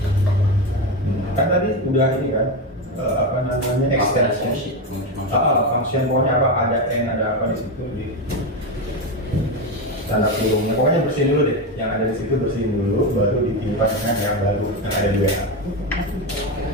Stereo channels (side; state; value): both; normal; correlation 0.14